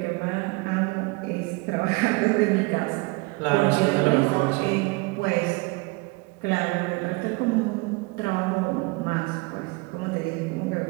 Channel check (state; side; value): quieter; left; 26.9 dB